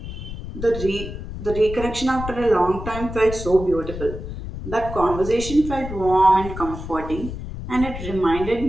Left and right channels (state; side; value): noise; left; rumble, 9 dB below the sound